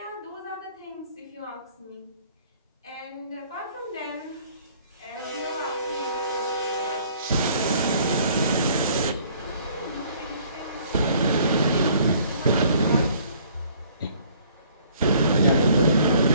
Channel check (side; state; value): both; inverted; correlation -0.58